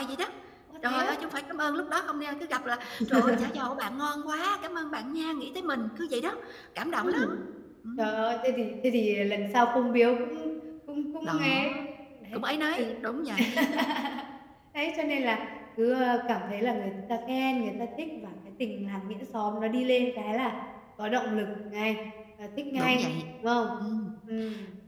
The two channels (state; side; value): identical; both; correlation 1.00